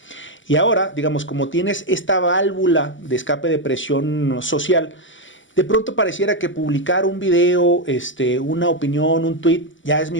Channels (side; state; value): right; late; 0.55 ms